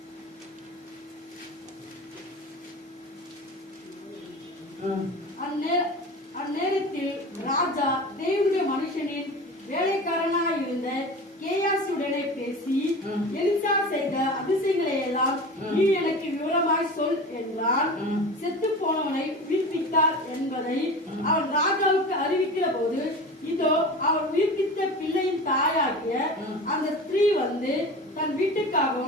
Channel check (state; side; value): normal; both; correlation 0.33